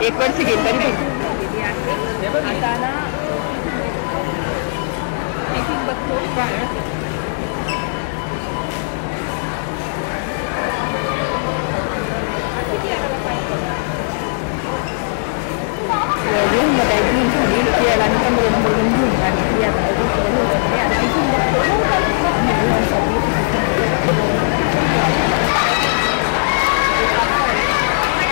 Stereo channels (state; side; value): silent; right; digital silence